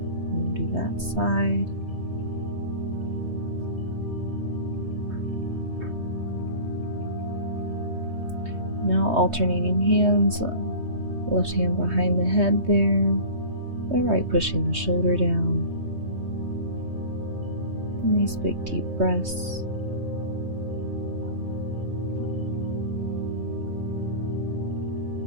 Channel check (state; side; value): late; left; 3.2 ms